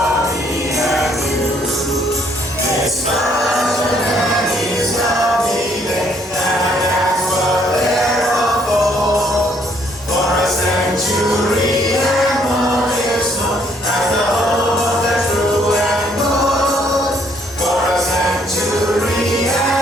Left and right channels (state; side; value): normal; both; correlation 0.67